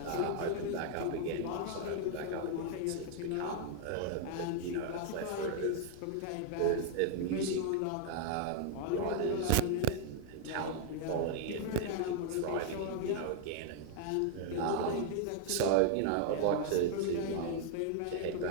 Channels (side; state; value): both; different; correlation 0.00